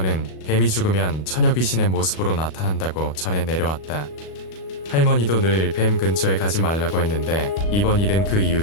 뱀이 죽으면 처녀 귀신의 모습으로 나타난다고 전해 내려왔다. 할머니도 늘 뱀 근처에 가지 말라고 했는데 이번 일은 그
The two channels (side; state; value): right; late; 37 ms